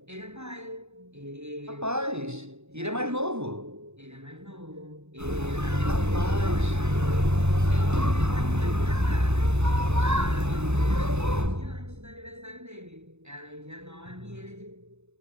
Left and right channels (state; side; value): late; left; 0.81 ms